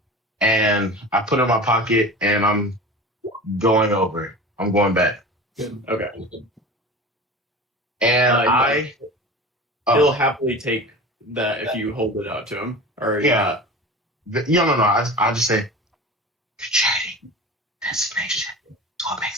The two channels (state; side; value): normal; both; correlation 0.34